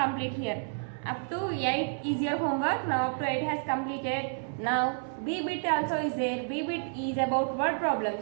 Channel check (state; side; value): silent; left; 58 dB below the other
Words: here. Up to 8 is your homework. Now up to 8 has completed. Now B bit also is there. B bit is about word